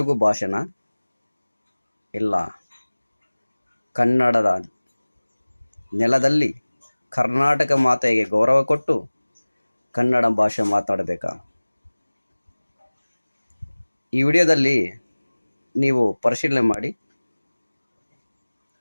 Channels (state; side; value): inverted; both; correlation -1.00